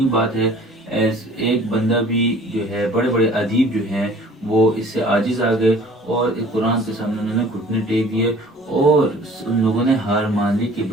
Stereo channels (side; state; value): both; normal; correlation 0.50